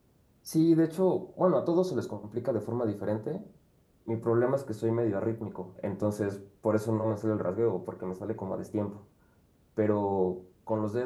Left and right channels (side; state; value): both; identical; correlation 1.00